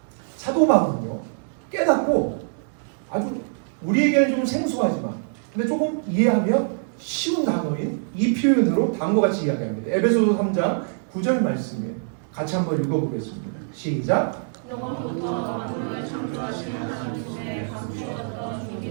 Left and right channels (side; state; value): left; silent; digital silence